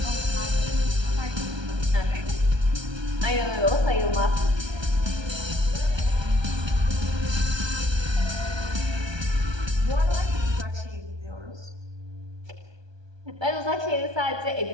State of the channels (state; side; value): late; left; 1.2 ms